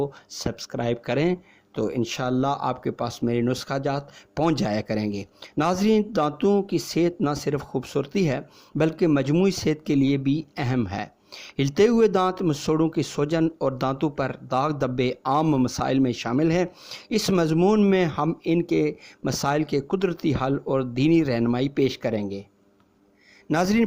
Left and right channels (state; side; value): identical; both; correlation 1.00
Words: सब्सक्राइब करें, तो इंशाअल्लाह आपके पास मेरे नुस्खा जात पहुँच जाया करेंगे। नाज़रीन, दांतों की सेहत न सिर्फ खूबसूरती है बल्कि मजमूई सेहत के लिए भी अहम है। हिलते हुए दांत, मसूड़ों की सूजन और दांतों पर दाग धब्बे आम मसाइल में शामिल हैं। इस मजमून में हम इनके मसाइल के कुदरती हल और दीनी रहनुमाई पेश करेंगे। नाज़रीन,